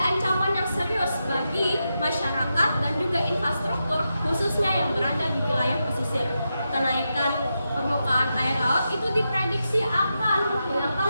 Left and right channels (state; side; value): inverted; both; correlation -0.87